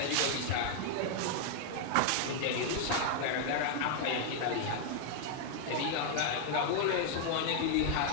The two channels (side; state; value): both; different; correlation 0.00